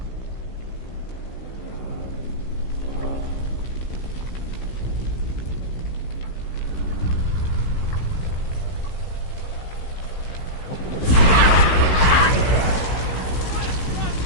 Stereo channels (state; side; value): late; right; 16 ms